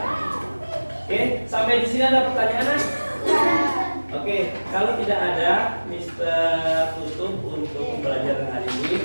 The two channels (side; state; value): both; inverted; correlation -1.00